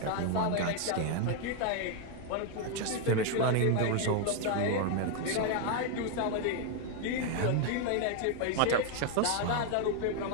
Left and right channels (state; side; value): different; both; correlation 0.00